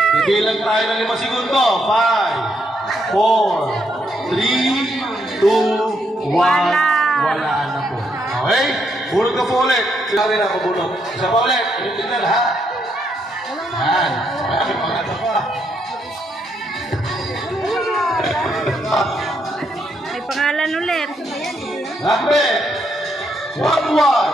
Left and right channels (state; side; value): normal; both; correlation 0.76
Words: Bibilang tayo ng 5 segundo. 5, 4, 3, 2, 1. Wala. Wala na po. Okay? Bunot ka po ulit. Sinabi na ako bunot. Isa pa ulit. Tingnan ha. Yan. Ay, maganda pa. May pangalan ulit. Number